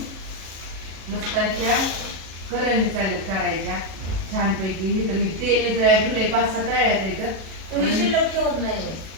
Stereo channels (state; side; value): late; left; 37 ms